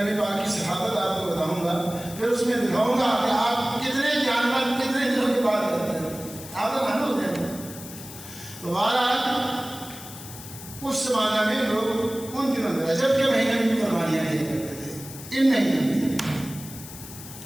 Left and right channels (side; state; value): left; noise; hiss, 14 dB below the sound